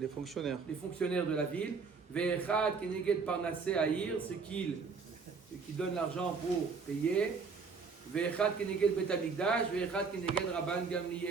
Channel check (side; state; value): left; quieter; 5.0 dB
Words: fonctionnaires. les fonctionnaires de la ville. Ve'echad keneged parnasse haïr, ceux qui donnent l'argent pour payer. Ve'echad keneged Bet Hamikdash, ve'echad keneged Rabban